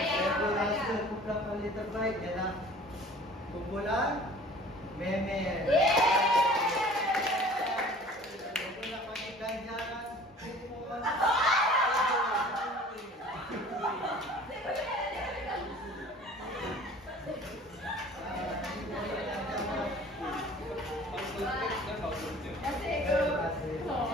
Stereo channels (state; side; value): normal; both; correlation 0.47